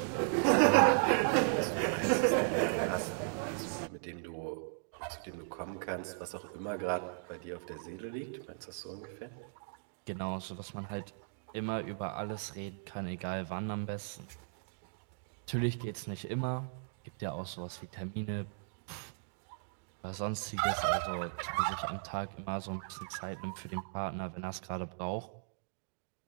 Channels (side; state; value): left; silent; digital silence